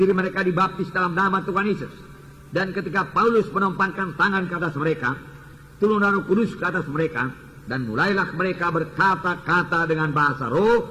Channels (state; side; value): identical; both; correlation 1.00